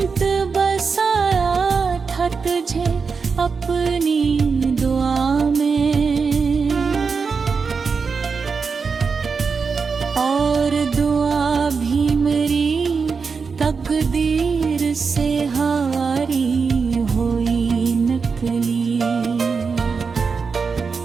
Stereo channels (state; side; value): quieter; left; 5.2 dB